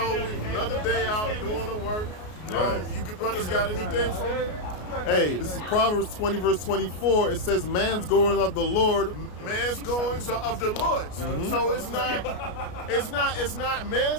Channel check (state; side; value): late; right; 33 ms